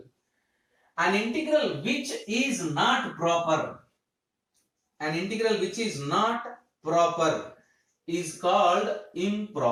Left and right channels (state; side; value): identical; both; correlation 1.00